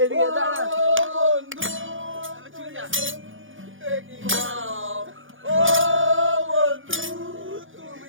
এদিকে দাঁড়া। চলে যা।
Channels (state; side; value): late; left; 0.58 ms